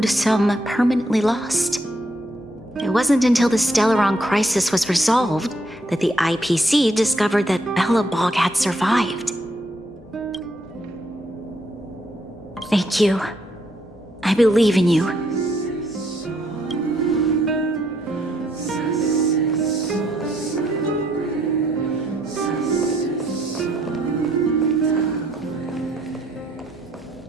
sum permanently lost. It wasn't until the Stellaron crisis was resolved that the IPC discovered that Belobog had survived. Thank you. I believe in you.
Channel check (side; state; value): both; normal; correlation 0.72